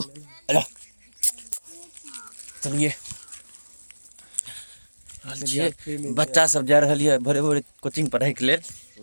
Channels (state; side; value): inverted; both; correlation -1.00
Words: चलिए बच्चा सब जा रहा है भोरे भोरे कोचिंग पढ़ाई के लिए